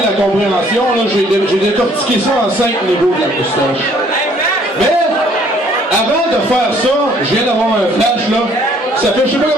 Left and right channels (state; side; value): normal; both; correlation 0.60